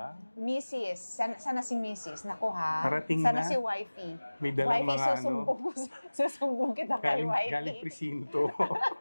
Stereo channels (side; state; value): both; inverted; correlation -1.00